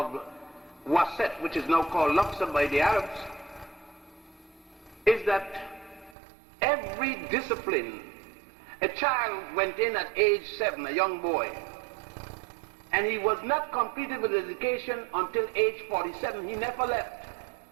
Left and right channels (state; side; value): drops out; left; at 6.2 s